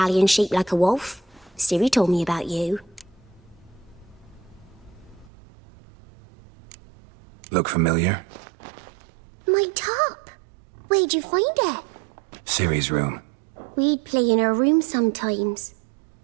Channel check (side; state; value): left; drops out; at 5.3 s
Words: shaped like a wolf. Ciri told me about you. Look familiar? My top. Where'd you find it? Ciri's room. We'd play in her room sometimes.